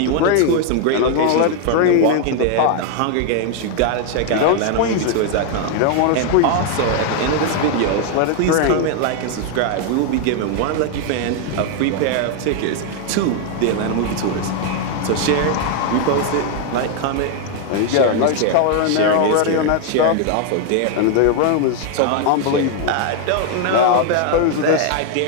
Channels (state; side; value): different; both; correlation 0.00